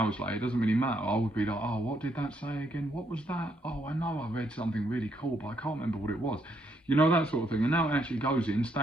later, it doesn't really matter. I would be like, oh, what did that say again? What was that? Oh, I know I read something really cool, but I can't remember what it was. You know, that sort of thing. And now it actually goes in,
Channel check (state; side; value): normal; both; correlation 0.74